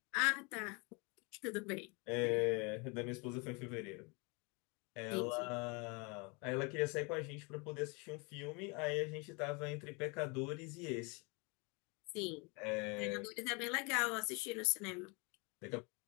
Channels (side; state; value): right; quieter; 30.7 dB